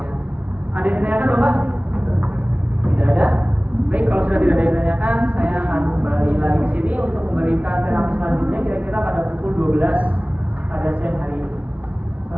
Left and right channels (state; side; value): late; left; 0.069 ms